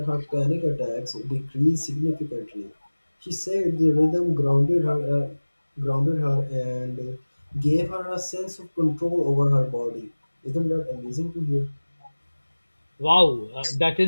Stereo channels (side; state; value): both; inverted; correlation -1.00